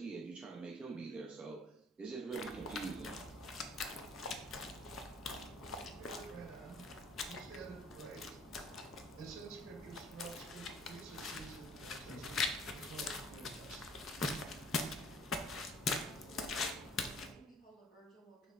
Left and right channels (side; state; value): both; normal; correlation 0.53